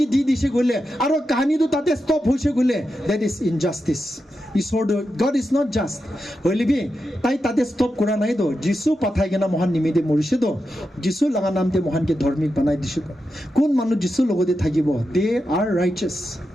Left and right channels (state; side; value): normal; both; correlation 0.88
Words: দি দিছে গলে আৰু কাহিনীটো তাতে ষ্টপ হৈছে গলে that is injustice ঈশ্বৰ God is not just হইলে বি তাই তাতে ষ্টপ কৰা নাই তো যিশু পাঠাই কেনা মহান নিমিতে মৰিছে তো যিশু লগা নামতে মহানকে ধাৰ্মিক বনাই দিছে কোন মানুহ যিশু লগতে থাকিব they are righteous